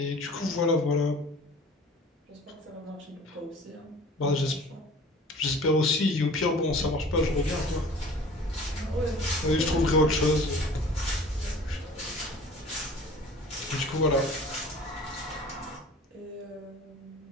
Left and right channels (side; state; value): both; normal; correlation 0.45